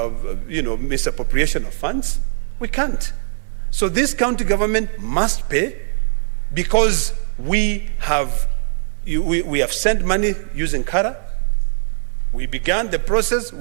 misappropriation of funds. We can't. So this county government must pay, because we have sent money using Kara. We began the process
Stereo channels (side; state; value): left; silent; digital silence